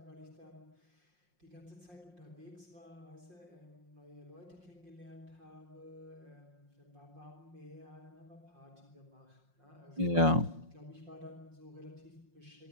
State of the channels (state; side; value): late; left; 5.6 ms